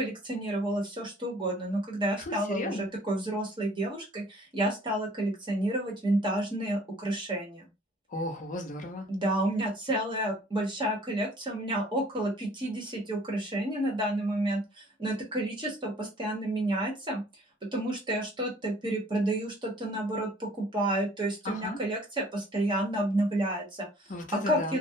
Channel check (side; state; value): both; normal; correlation 0.54